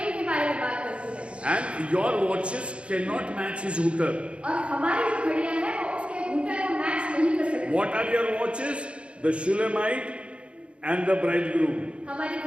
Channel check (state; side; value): late; left; 0.059 ms